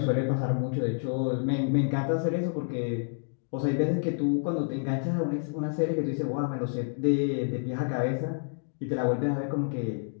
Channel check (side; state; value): right; silent; digital silence